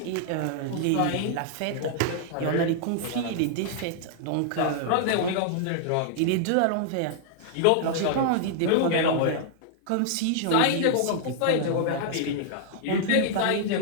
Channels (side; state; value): both; different; correlation -0.01